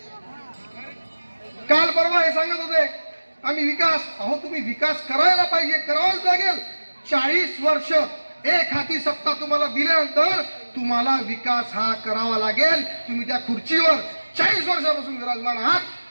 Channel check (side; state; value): both; inverted; correlation -1.00